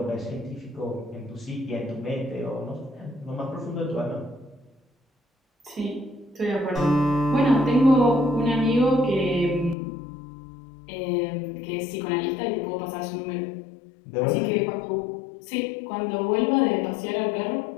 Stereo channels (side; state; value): right; drops out; at 9.8 s